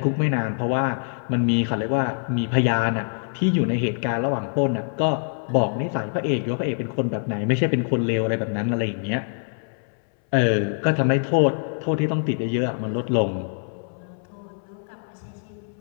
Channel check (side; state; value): right; silent; 62 dB below the other